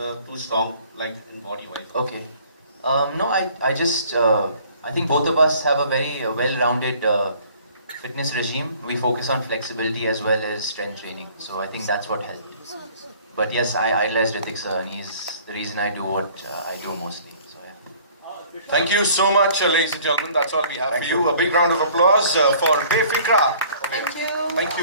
are too strong, like in body wise. okay. No, I just I think both of us have a very well-rounded fitness regime. We focus on flexibility as well as strength training. So I think that's what helped. But yes, I idolize Hrithik sir, and he's the reason I do what I do mostly. So yeah. Thank you so much, ladies and gentlemen. That's all we have for you. A big round of applause for Befikra. Thank you. Thank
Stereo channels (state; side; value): inverted; both; correlation -0.54